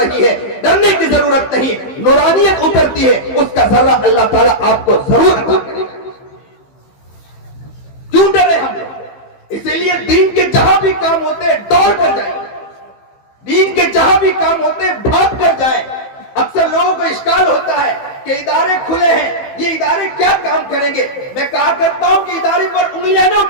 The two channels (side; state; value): right; late; 15 ms